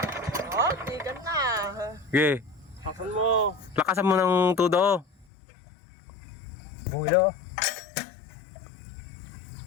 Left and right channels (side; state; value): right; drops out; at 5.2 s